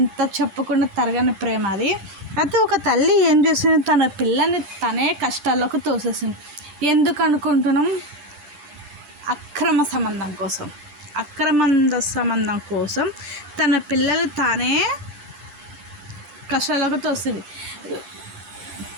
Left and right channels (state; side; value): late; left; 10 ms